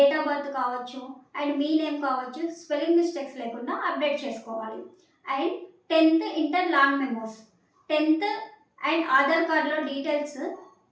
ఆఫ్ బర్త్ కావచ్చు, అండ్ మీ నేమ్ కావచ్చు, స్పెల్లింగ్ మిస్టేక్స్ లేకుండా అప్డేట్ చేసుకోవాలి. And 10th inter long memos, 10th and Aadhaar కార్డులో డీటెయిల్స్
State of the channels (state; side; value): identical; both; correlation 1.00